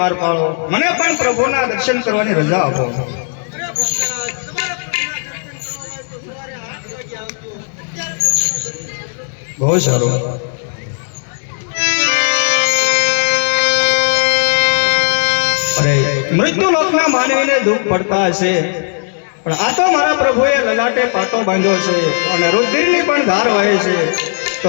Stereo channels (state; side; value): silent; right; 57 dB below the other